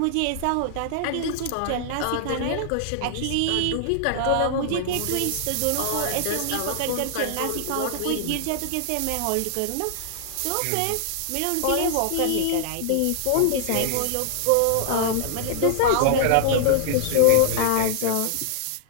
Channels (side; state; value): both; different; correlation -0.01